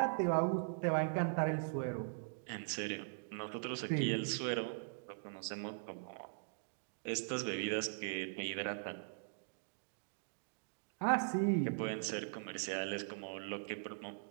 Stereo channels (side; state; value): left; silent; digital silence